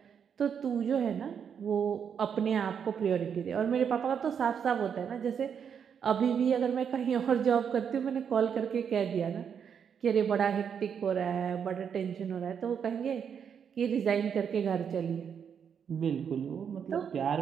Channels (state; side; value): quieter; left; 7.5 dB